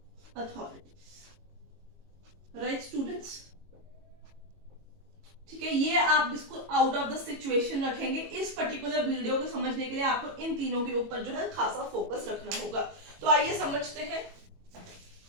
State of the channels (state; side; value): late; left; 22 ms